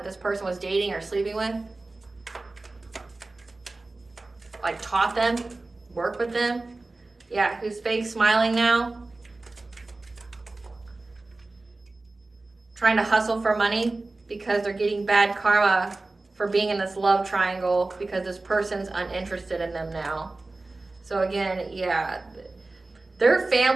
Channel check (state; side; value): quieter; left; 3.2 dB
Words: this person was dating or sleeping with. Like, taught them, worked with them. Yeah, who's fake smiling now. Trying to hustle for money because they're getting bad karma for being in this love triangle because this person's uninterested in them now. So again, yeah, their